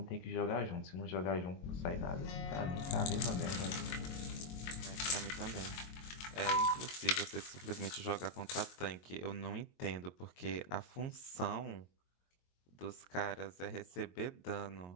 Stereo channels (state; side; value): late; right; 22 ms